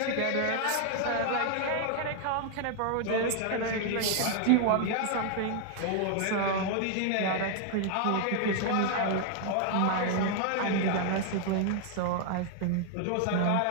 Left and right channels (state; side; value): different; both; correlation 0.00